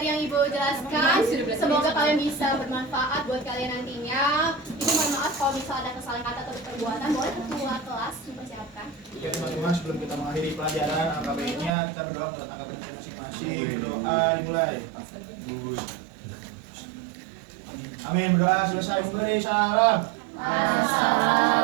yang Ibu jelaskan semoga kalian bisa bermanfaat buat kalian nantinya. Ibu mohon maaf kalau misalnya ada kesalahan kata atau perbuatan, boleh ketua kelas dipersiapkan. Ya teman-teman, sebelum kita mengakhiri pelajaran AKBN-nya, kita berdoa untuk AKBN masing-masing. Berdoa dimulai. Amin, berdoa selesai. Beri salam.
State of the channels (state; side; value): drops out; left; at 11.7 s